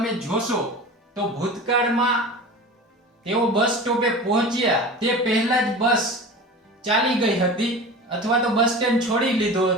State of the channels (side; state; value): both; normal; correlation 0.34